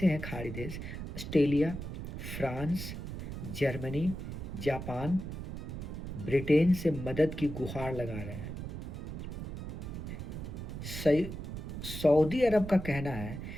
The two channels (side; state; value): right; noise; rumble, 7 dB below the sound